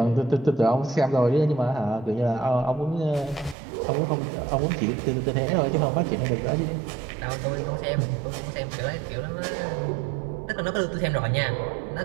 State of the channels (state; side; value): drops out; left; at 3.6 s